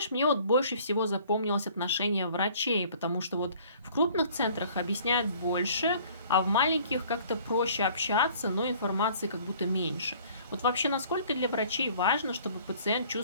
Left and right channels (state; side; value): inverted; both; correlation -0.54